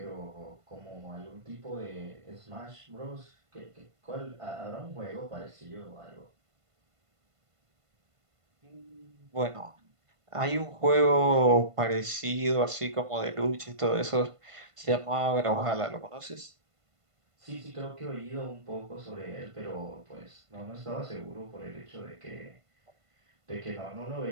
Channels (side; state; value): left; late; 1.5 ms